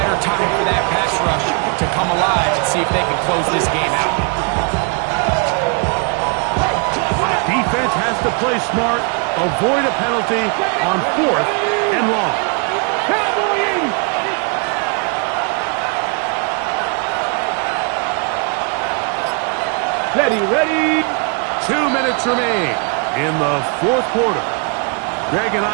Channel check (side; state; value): left; quieter; 35.0 dB